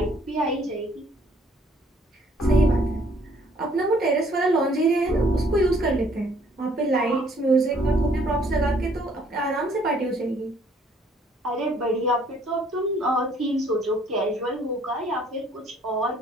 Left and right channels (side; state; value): both; normal; correlation 0.62